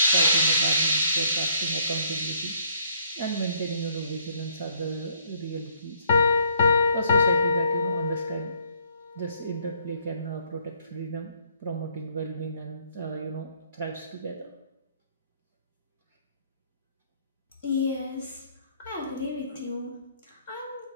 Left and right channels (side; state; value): both; inverted; correlation -0.65